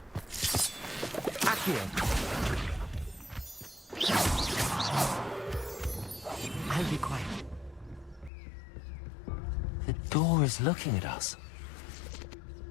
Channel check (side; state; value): right; drops out; at 8.3 s